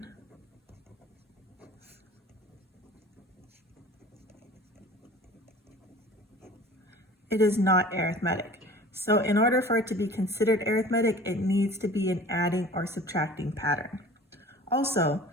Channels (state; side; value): normal; both; correlation 0.43